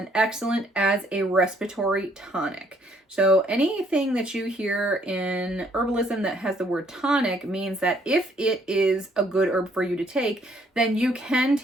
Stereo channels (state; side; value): normal; both; correlation 0.66